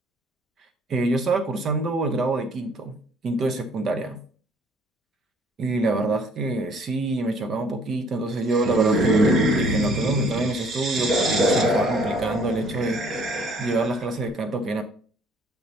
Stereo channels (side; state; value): both; normal; correlation 0.59